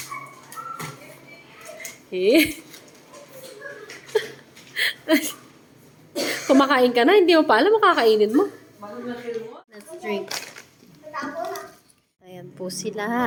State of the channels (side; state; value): both; identical; correlation 1.00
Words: Eh. Kumakain ka na, hindi mo pa alam makakainin mo. Let's drink. Ayan po